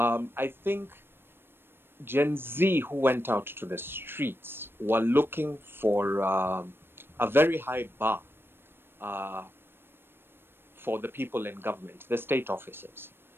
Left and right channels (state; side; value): late; left; 0.10 ms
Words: think Gen Z who went out to the streets were looking for a very high bar for the people in government, the state officers.